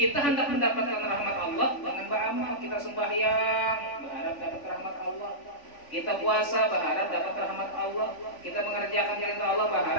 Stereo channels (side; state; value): right; late; 3.5 ms